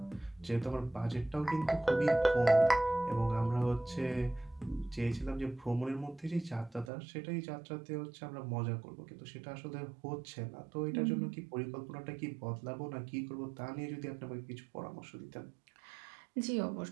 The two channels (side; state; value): left; drops out; at 6.9 s